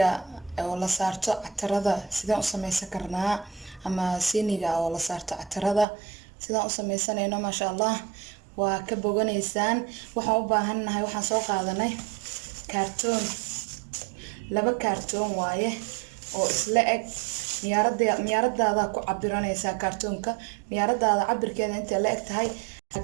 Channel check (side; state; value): left; drops out; at 5.9 s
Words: oo la saarto catarada sidaan u samaysan karnaa ama siiniga oo la saarto catarada sidaan u samaysanayno maasha Allah waa ka boganaysaan waxaan u baahanahay waxaan soo qaadanay kartoon laba kartoon waaye oo isla eg miyaaradaada ku cabiranaysaa kartoonka miyaaradaada cabirkeeda inta la eg tahay